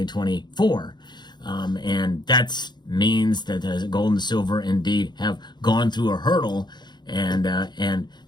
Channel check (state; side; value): late; right; 0.21 ms